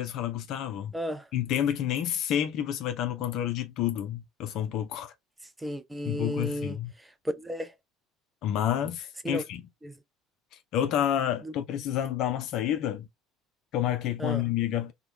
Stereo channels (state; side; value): quieter; right; 8.6 dB